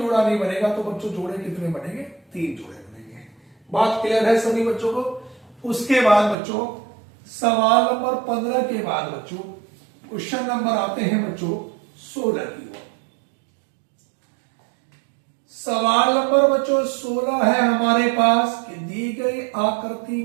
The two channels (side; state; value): left; drops out; at 6.4 s